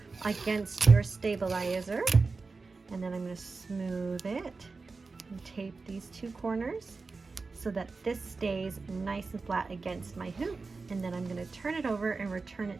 against your stabilizer. And then I'm going to smooth it and tape these two corners so that this stays nice and flat against my hoop. And then I'm going to turn it over and return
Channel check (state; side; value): quieter; left; 4.1 dB